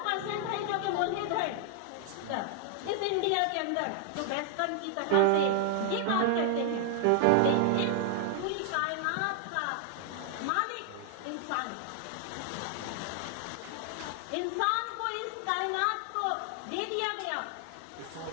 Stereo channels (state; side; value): different; both; correlation 0.00